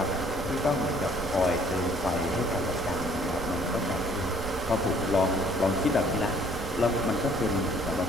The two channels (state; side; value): noise; right; rumble, 10 dB below the sound